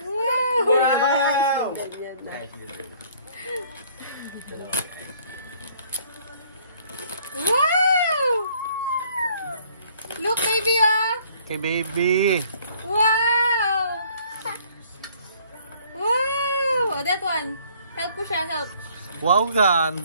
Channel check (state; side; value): inverted; both; correlation -0.59